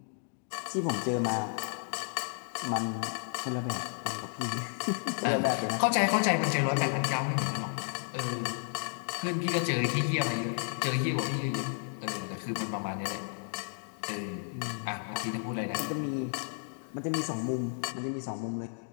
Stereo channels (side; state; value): right; silent; 56 dB below the other